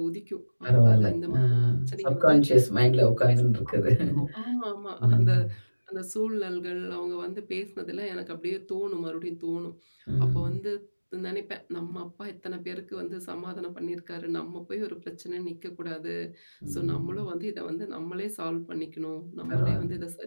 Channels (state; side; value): inverted; both; correlation -1.00